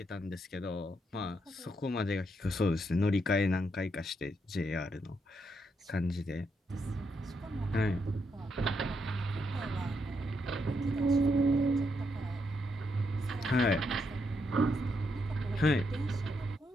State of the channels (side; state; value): both; normal; correlation 0.79